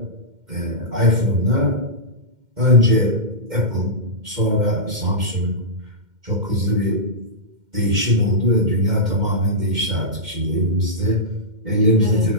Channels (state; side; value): late; left; 2.1 ms